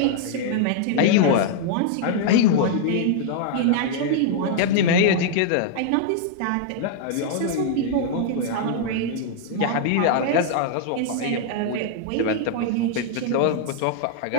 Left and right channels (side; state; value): both; different; correlation -0.01